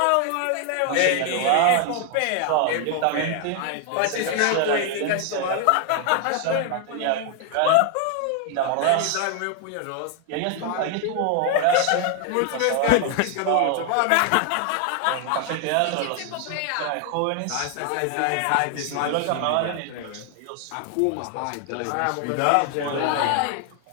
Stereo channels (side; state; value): both; different; correlation 0.00